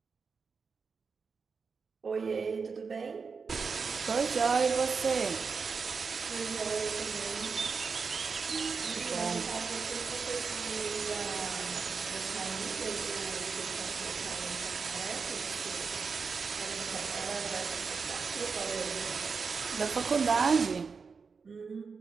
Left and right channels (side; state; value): left; quieter; 5.2 dB